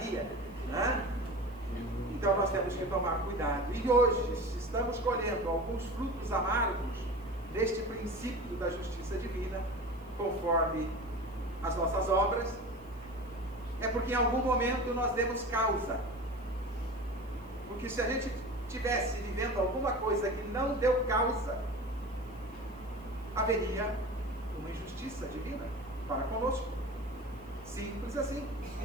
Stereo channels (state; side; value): noise; right; hiss, 30 dB below the sound